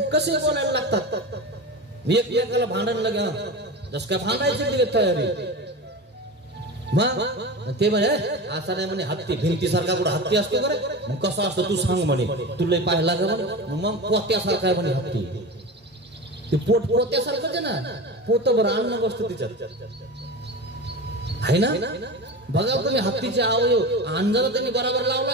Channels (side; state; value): both; normal; correlation 0.27